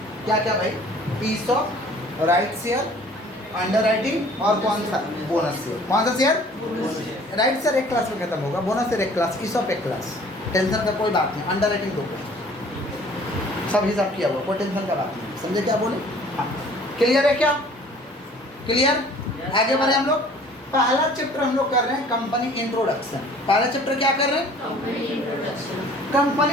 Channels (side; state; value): both; normal; correlation 0.52